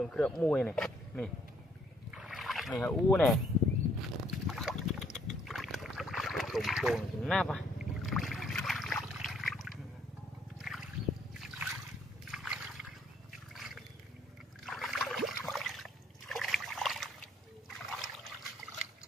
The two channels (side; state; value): both; normal; correlation 0.66